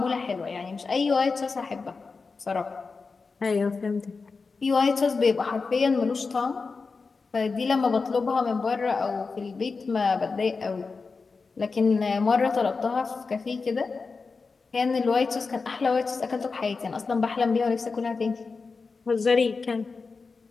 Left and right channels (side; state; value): right; quieter; 4.4 dB